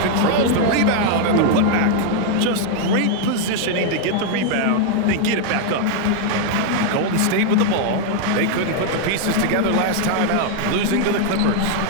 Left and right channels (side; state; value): both; different; correlation 0.00